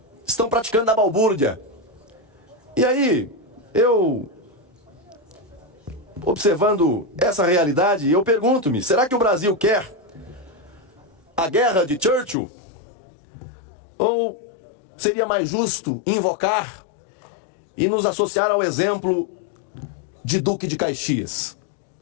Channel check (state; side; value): drops out; right; at 12.4 s